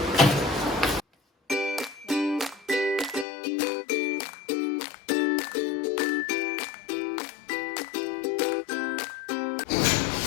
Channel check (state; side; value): drops out; right; at 3.2 s